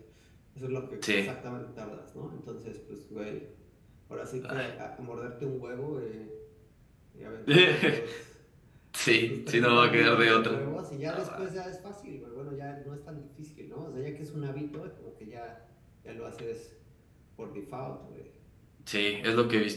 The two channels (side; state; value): both; identical; correlation 1.00